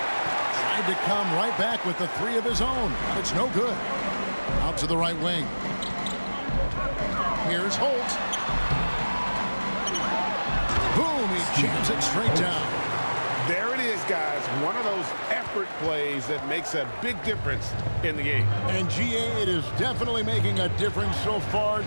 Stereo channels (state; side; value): inverted; both; correlation -1.00